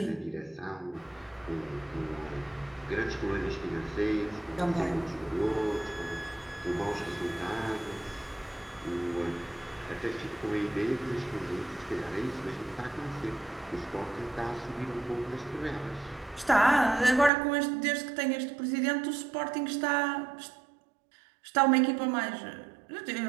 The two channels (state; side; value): drops out; left; at 17.3 s